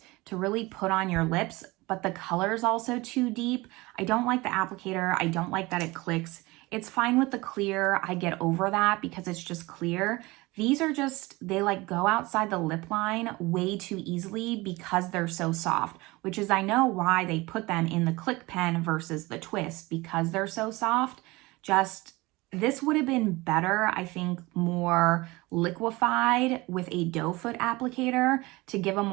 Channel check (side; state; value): left; quieter; 22.0 dB